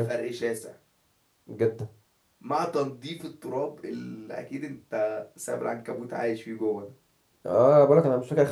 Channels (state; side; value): identical; both; correlation 1.00